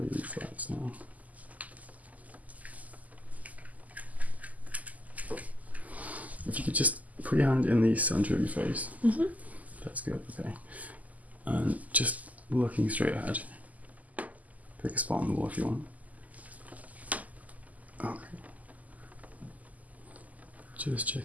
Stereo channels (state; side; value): late; left; 0.077 ms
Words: reflex now. If you could just put your hand in the center of your face. Mm-hmm. That's good, okay. And just looking straight ahead. Pick a spot on the wall if you want. Okay. Just